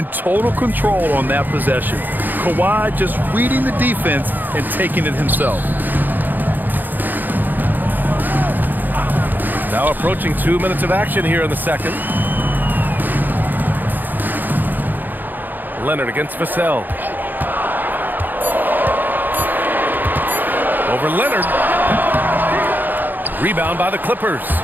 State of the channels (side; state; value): left; late; 0.088 ms